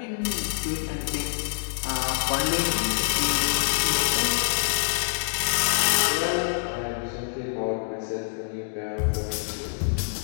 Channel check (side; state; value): right; silent; digital silence